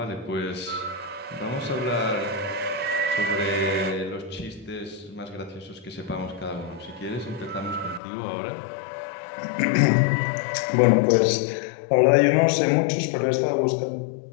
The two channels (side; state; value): right; drops out; at 8.0 s